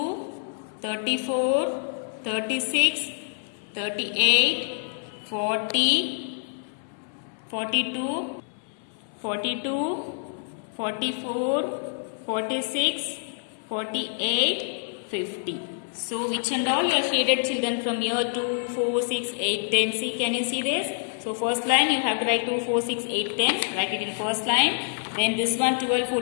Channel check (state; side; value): silent; right; 60 dB below the other